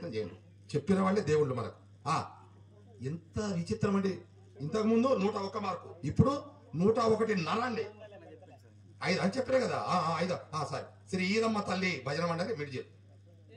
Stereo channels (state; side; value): identical; both; correlation 1.00